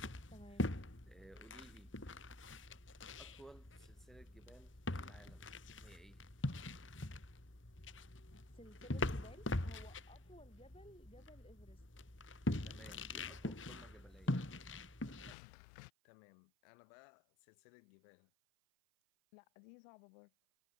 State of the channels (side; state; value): right; drops out; at 15.4 s